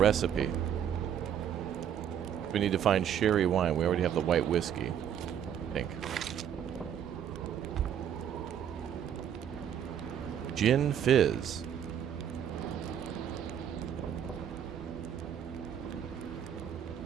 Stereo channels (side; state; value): left; quieter; 9.2 dB